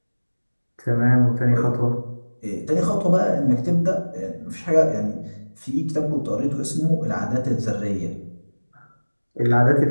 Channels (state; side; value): inverted; both; correlation -1.00